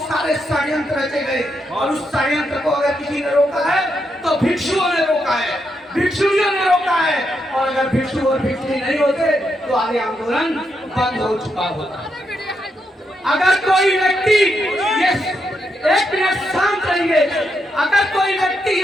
सारे षड्यंत्र रचे गए और उस षड्यंत्र को अगर किसी ने रोका है तो भिक्षुओं ने रोका है, भिक्षुओं ने रोका है, और अगर भिक्षु और भिक्षुणी नहीं होते तो आगे आंदोलन बंद हो चुका होता। अगर कोई व्यक्ति ये एक मिनट शांत रहिए, अगर कोई व्यक्ति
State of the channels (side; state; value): both; normal; correlation 0.81